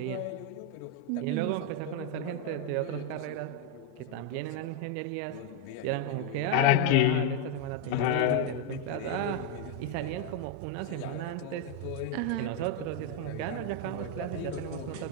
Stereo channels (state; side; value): different; both; correlation 0.01